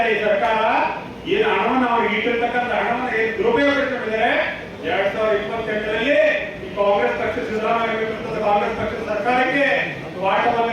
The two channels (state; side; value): identical; both; correlation 1.00